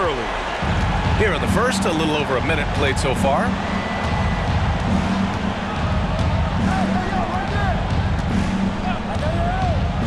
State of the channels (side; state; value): both; identical; correlation 1.00